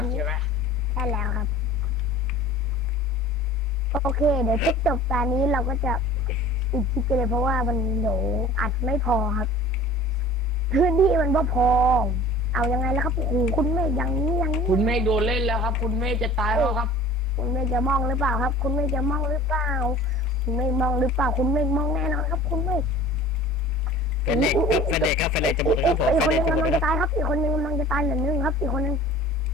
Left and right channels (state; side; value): normal; both; correlation 0.43